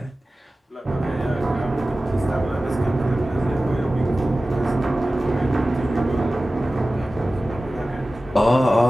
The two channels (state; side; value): normal; both; correlation 0.96